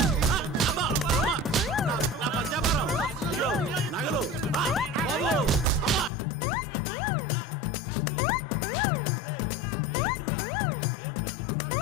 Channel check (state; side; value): drops out; right; at 6.1 s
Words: నా పత్యాపారం. అయ్యో నగలు. దరిద్రుడా, ఏం మిత్రుడు రా